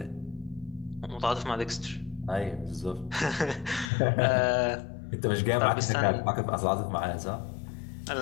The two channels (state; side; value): drops out; right; at 3.9 s